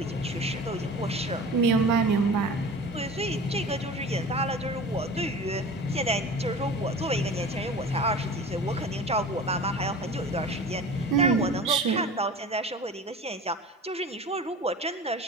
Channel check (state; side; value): normal; both; correlation 0.37